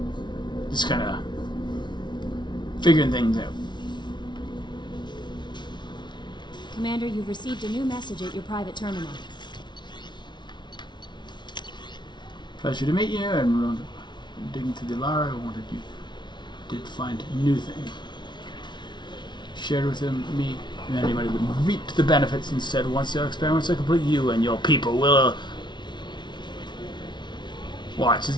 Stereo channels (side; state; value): right; late; 0.22 ms